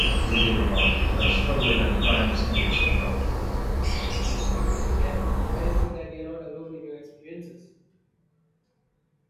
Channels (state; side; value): identical; both; correlation 1.00